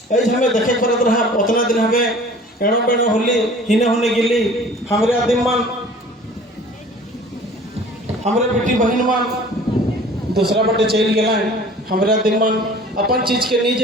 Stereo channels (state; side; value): normal; both; correlation 0.47